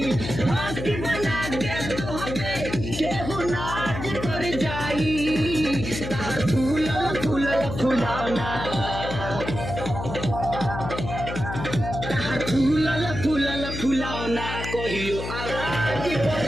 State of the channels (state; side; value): noise; left; hum, 6 dB below the sound